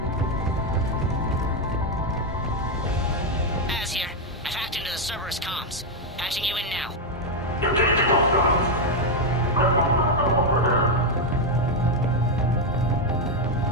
Az here. I've hacked into the Cerberus comms. Patching you in now.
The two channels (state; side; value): normal; both; correlation 0.03